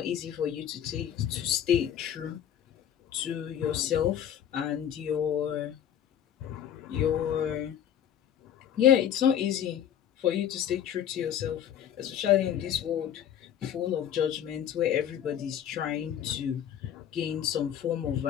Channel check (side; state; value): right; quieter; 9.8 dB